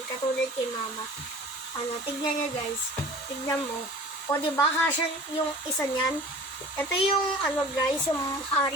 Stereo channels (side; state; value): both; normal; correlation 0.43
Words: Katulad kay mama. Tignan nyo guys. Tignan mo. O, diba, kasya yung isa niyan. Ito yung, guys, yung